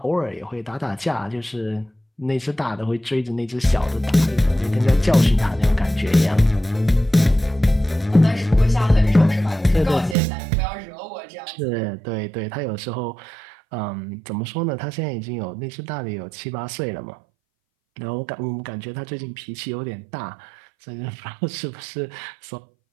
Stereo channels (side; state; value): left; drops out; at 10.2 s